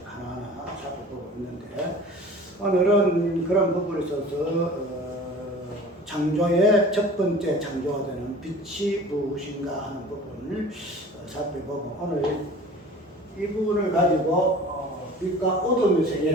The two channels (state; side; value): normal; both; correlation 0.43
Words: 하나하나 살펴보고 있는데, 오늘은 그런 부분에 있어서 창조의 첫 번째 창조가 되는 빛이 무엇인가 하는 부분을 살펴보고, 오늘 이 부분을 가지고 빛과 어둠의